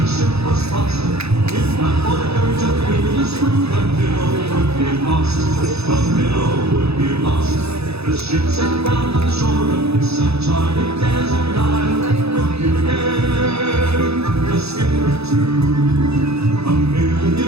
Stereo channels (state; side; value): late; left; 0.79 ms